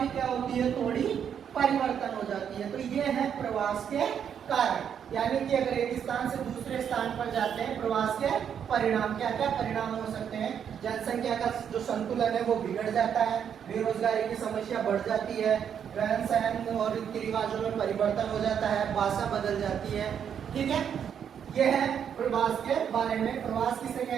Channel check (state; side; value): quieter; left; 8.2 dB